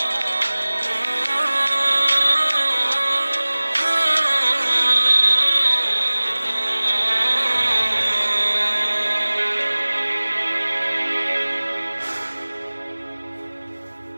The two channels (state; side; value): inverted; both; correlation -1.00